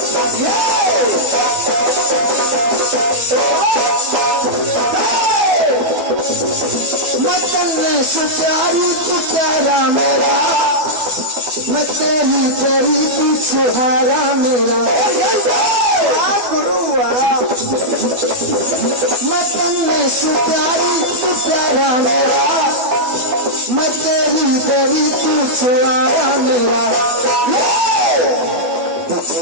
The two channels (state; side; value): late; left; 12 ms